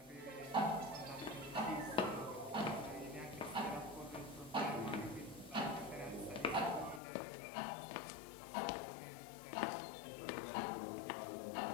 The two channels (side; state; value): right; drops out; at 7.0 s